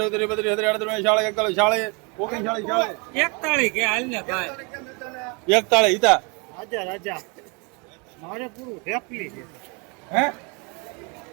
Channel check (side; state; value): left; quieter; 31.7 dB